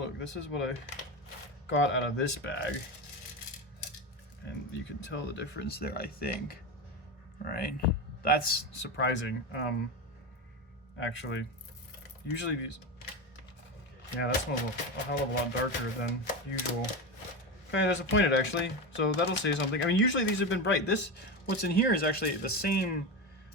this is what I got out of this bag, and you can tell the difference there, I think. Right? That's surprising. Actually, usually these, yeah, that smells a hell of a lot darker than usual. Okay, that's pointed actually, so that'll say something. I mean, usually these have been bright. This, what's in here is actually the same,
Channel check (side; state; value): both; normal; correlation 0.19